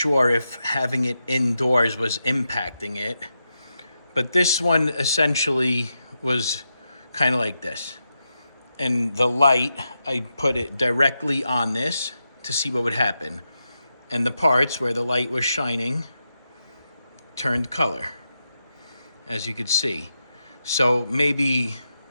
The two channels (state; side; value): inverted; both; correlation -0.87